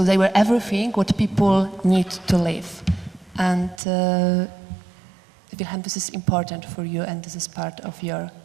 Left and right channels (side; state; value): left; drops out; at 3.8 s